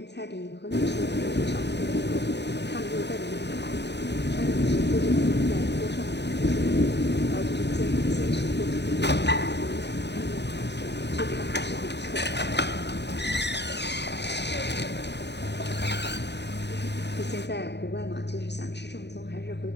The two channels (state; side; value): late; right; 0.50 ms